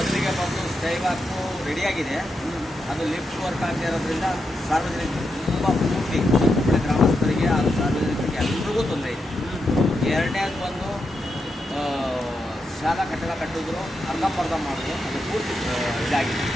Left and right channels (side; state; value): both; normal; correlation 0.85